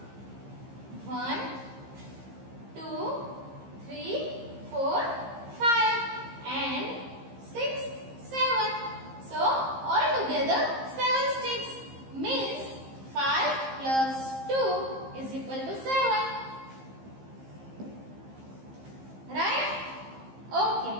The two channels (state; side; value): late; left; 15 ms